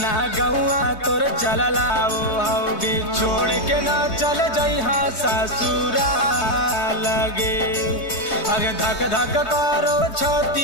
गौआ तोर चलला वो हौगे छोड़ के ना चल जइहा ससुरा लगे अगे धक धक करो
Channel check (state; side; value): late; right; 3.2 ms